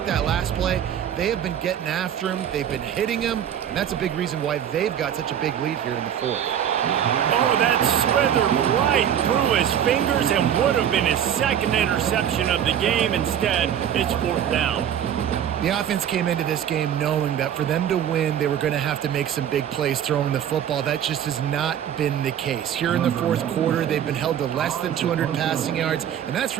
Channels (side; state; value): left; quieter; 9.6 dB